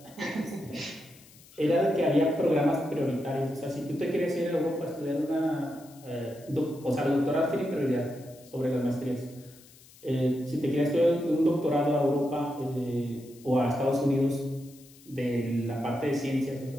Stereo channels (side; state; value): left; noise; hiss, 24 dB below the sound